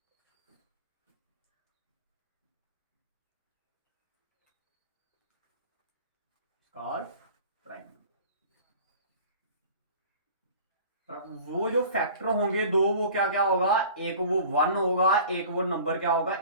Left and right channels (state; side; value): inverted; both; correlation -0.43